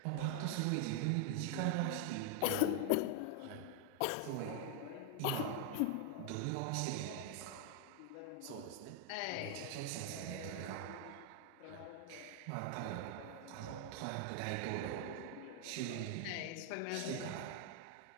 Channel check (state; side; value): different; both; correlation 0.00